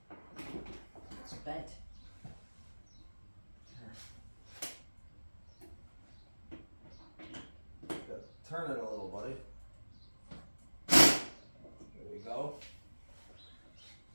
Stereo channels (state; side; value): inverted; both; correlation -1.00